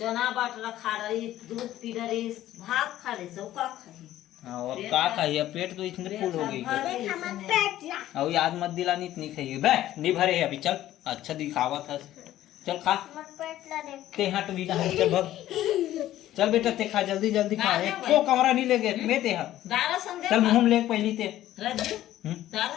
बाटला खा रही दूध पी रही भात खा रही सब का खाई हाँ और का खाइए पेट तो इतने फुल हो गई देख हमारा पेट ला अब याद मत दिलानी इतनी खाइए बे नहीं भरे है अभी चल अच्छा दिखावा था चल खा हमारा पेट ला देख ते हट भी कहाँ चल भग चल बेटा ते खा जल्दी जल्दी खा को कमरा नहीं ले गए मैं ते हट दारा संग चल मुंह में ले पहली ते रज्जू हम्म?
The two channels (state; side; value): quieter; right; 13.6 dB